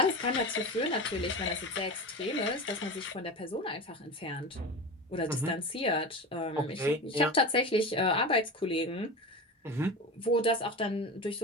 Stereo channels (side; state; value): both; normal; correlation 0.27